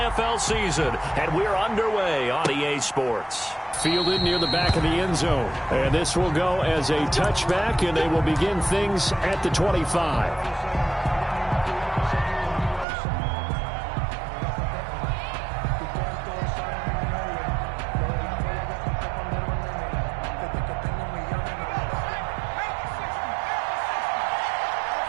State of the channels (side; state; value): left; drops out; at 12.9 s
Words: season, and we're underway on EA Sports. Fielded near the back of the end zone. And this will go as a touchback, and they will begin things at the 25.